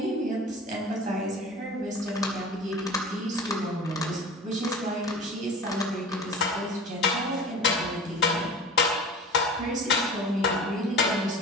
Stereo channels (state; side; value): normal; both; correlation 0.36